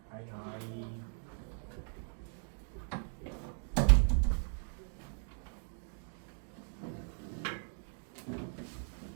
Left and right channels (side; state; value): left; silent; 53 dB below the other